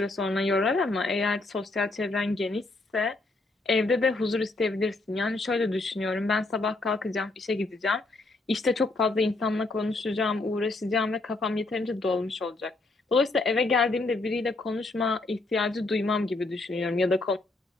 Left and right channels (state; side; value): quieter; right; 3.1 dB